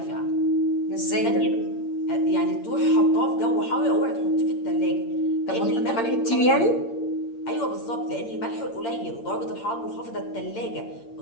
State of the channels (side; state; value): right; late; 8.7 ms